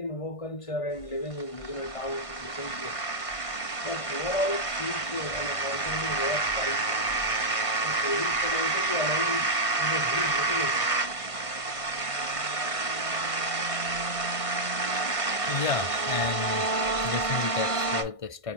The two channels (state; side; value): late; right; 1.5 ms